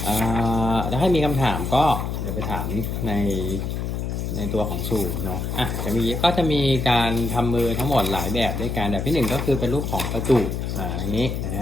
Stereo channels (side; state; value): left; noise; hum, 3 dB below the sound